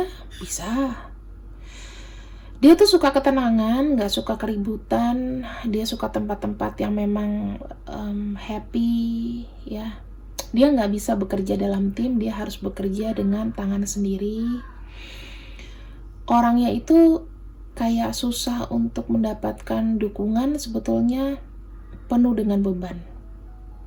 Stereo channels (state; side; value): identical; both; correlation 1.00